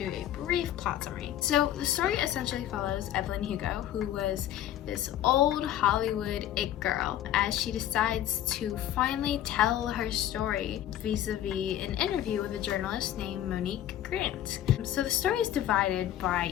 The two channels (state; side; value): quieter; right; 11.9 dB